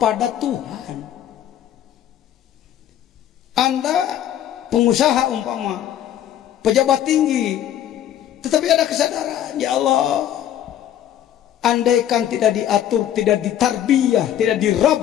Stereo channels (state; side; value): quieter; right; 11.0 dB